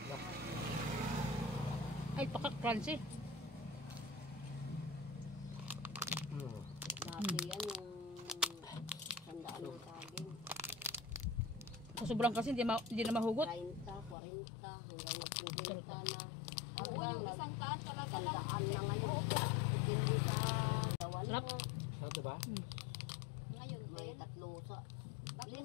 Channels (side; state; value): right; drops out; at 14.2 s